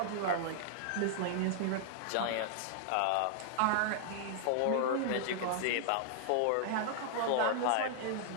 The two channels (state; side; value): different; both; correlation -0.01